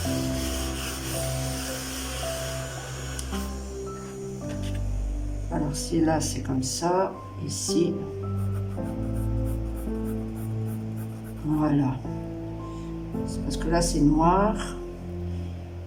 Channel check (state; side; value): identical; both; correlation 1.00